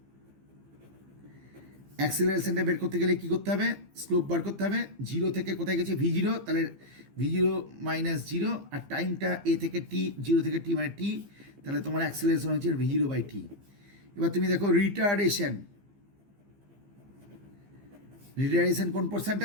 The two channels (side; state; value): left; late; 15 ms